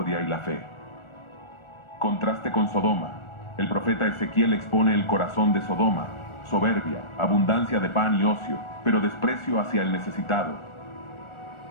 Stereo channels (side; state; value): right; late; 1.4 ms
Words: y la fe. Contraste con Sodoma. El profeta Ezequiel expone el corazón de Sodoma: soberbia, abundancia de pan y ocio, pero desprecio hacia el necesitado.